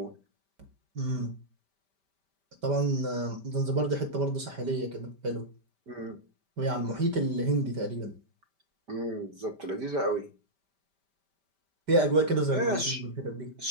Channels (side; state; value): left; late; 5.1 ms